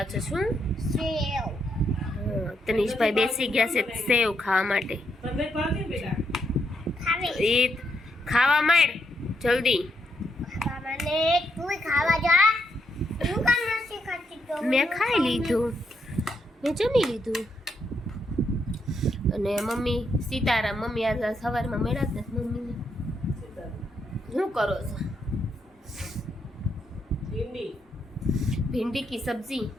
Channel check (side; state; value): both; normal; correlation 0.79